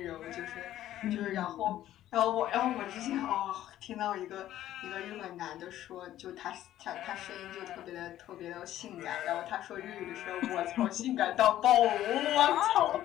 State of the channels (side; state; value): right; quieter; 13.0 dB